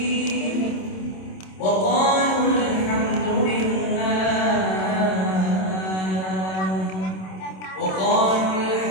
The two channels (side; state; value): right; late; 27 ms